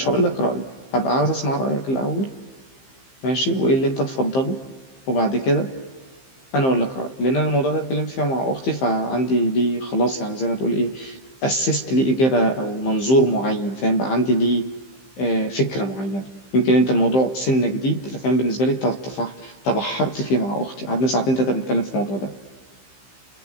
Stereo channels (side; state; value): right; late; 15 ms